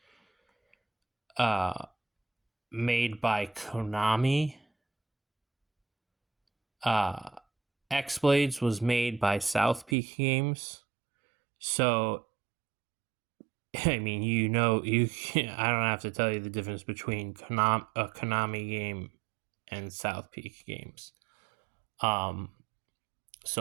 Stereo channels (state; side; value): drops out; left; at 10.0 s